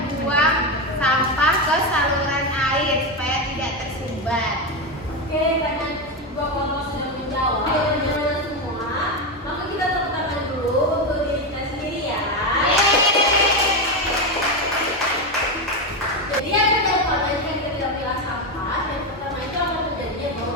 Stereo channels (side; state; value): both; normal; correlation 0.12